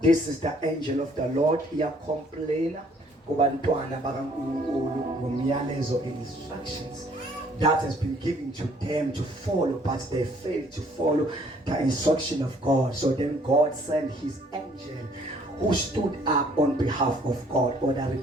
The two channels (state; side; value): normal; both; correlation 0.61